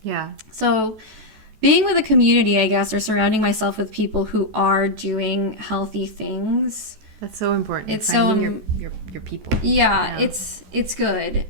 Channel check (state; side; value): late; left; 14 ms